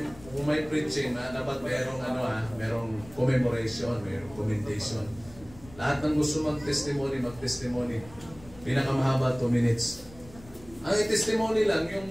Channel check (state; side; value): noise; left; rumble, 21 dB below the sound